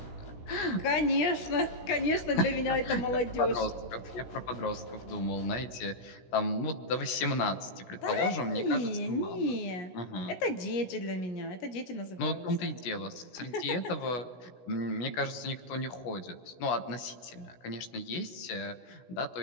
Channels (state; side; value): late; right; 16 ms